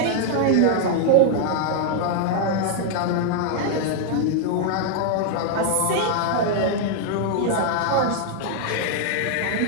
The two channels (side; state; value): both; different; correlation 0.00